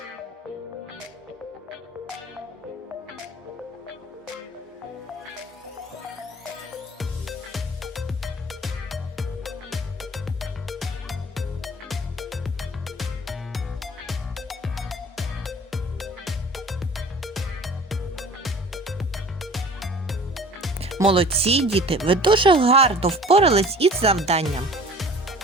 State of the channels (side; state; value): both; normal; correlation 0.46